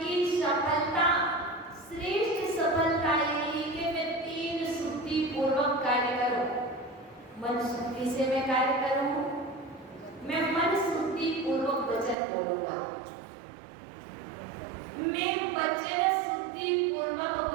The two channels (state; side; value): drops out; left; at 12.2 s